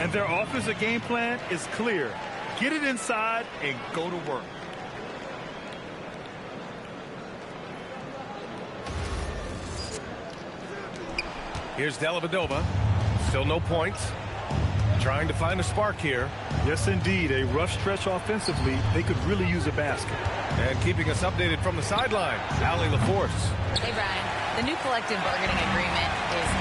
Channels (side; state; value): both; identical; correlation 1.00